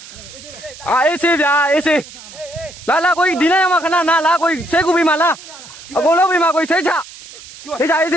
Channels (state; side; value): noise; right; hiss, 17 dB below the sound